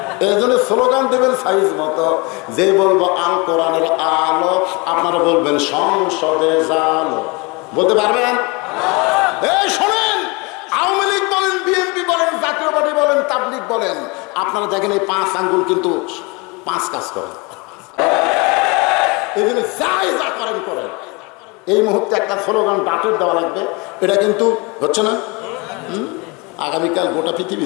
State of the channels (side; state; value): right; quieter; 28.1 dB